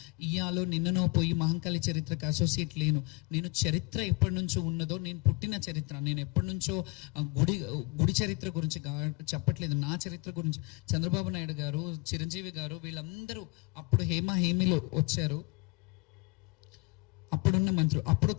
ఇయాలో నిన్ననో పోయి మహంకాళి చరిత్రకు అసోసియేట్ లేను. నేను చరిత్ర ఎప్పటి నుంచో ఉన్నదో, నేను పుట్టిన చరిత్ర, నేను ఎప్పటి నుంచో గుడి చరిత్ర గురించి చెప్పట్లేదు, నా చరిత్ర గురించి. చంద్రబాబు నాయుడు గారు, చిరంజీవి గారు వీళ్ళందరూ అప్పుడు హేమీలో వచ్చారు. అప్పుడున్న మంత్రులు, అప్పుడు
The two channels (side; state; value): right; quieter; 26.1 dB